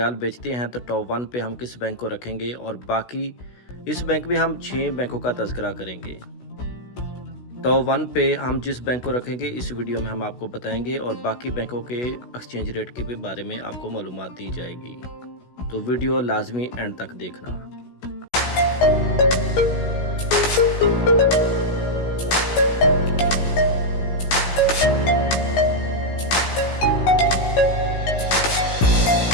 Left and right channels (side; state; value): right; late; 16 ms